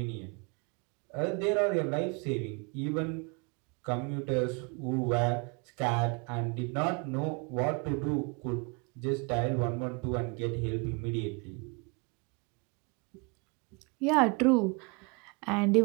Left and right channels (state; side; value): quieter; left; 31.2 dB